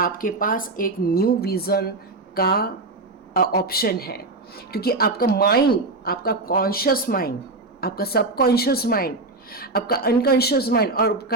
पास एक न्यू विज़न का ऑप्शन है। क्योंकि आपका माइंड, आपका कॉन्शियस माइंड, आपका सबकॉन्शियस माइंड, आपका अनकॉन्शियस माइंड और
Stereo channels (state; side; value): quieter; left; 3.2 dB